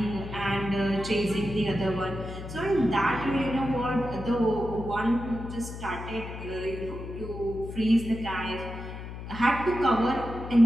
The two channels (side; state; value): left; noise; hum, 10 dB below the sound